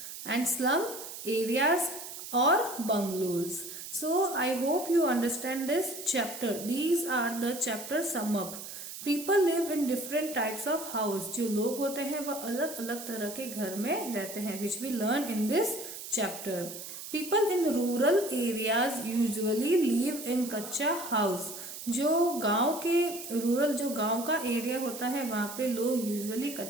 and slum areas or bungalows. So I hope you understand this chapter. These are the chapter sum up. People live in different types of house, जो लोग होते हैं वह अलग अलग तरह के घर में रहते हैं, which we learn in this chapter. People in rural areas usually live in kutcha house. जो गांव के रूरल जो गांव का एरिया होता है वहां पे लोग यूजुअली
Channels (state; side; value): noise; right; hiss, 10 dB below the sound